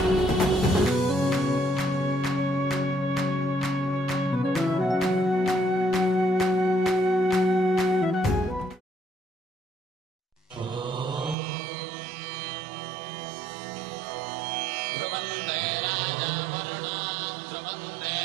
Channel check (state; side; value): drops out; left; at 11.4 s